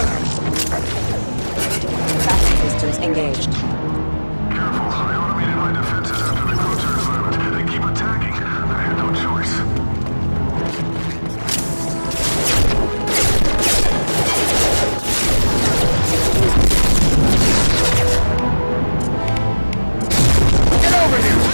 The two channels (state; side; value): inverted; both; correlation -1.00